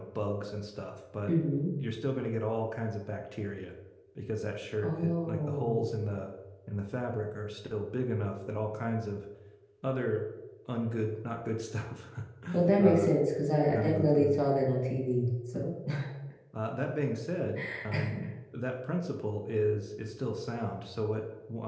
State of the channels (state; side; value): identical; both; correlation 1.00